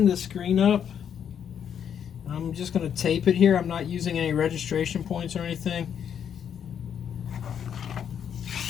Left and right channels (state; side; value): quieter; right; 8.4 dB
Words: the screen up. I'm just going to tape it here. I'm not using any registration points or anything.